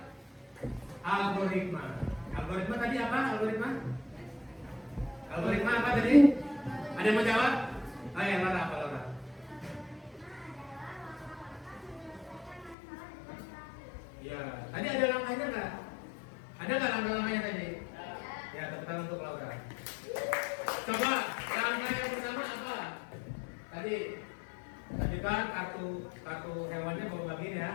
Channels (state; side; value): drops out; right; at 12.8 s